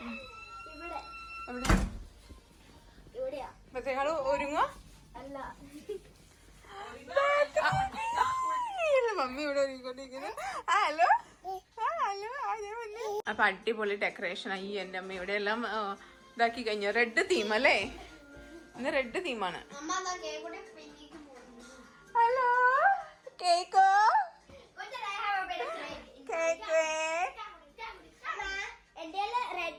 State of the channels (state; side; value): identical; both; correlation 1.00